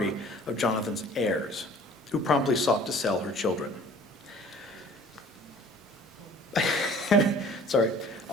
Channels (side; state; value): both; normal; correlation 0.50